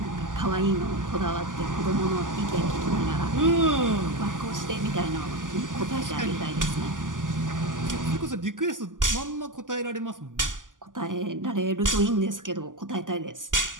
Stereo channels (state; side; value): late; left; 0.88 ms